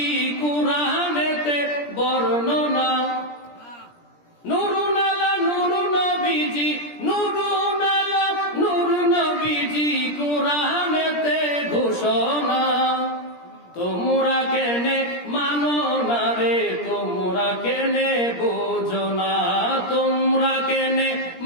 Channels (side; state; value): right; late; 17 ms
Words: কুরআনেতে বর্ণনা। নুরুন আলা নূর নবীজি, নুরুন আলা নূর নবীজি, কুরআনেতে ঘোষণা। তোমরা কেনে মানো না রে, তোমরা কেনে বোঝো না, তোমরা কেনে